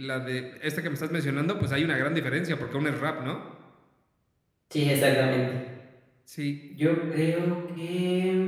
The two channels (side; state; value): both; identical; correlation 1.00